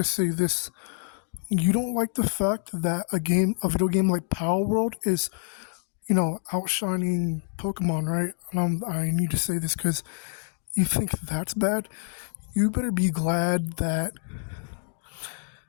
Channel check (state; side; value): silent; right; 60 dB below the other